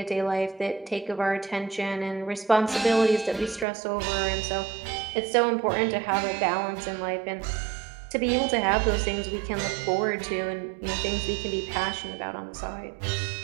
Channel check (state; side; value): drops out; left; at 3.7 s